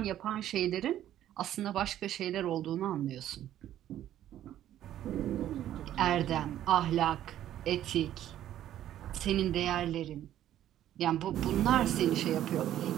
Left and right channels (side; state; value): left; quieter; 12.0 dB